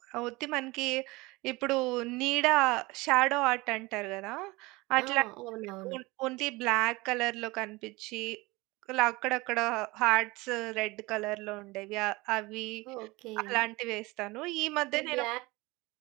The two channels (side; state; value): left; quieter; 22.5 dB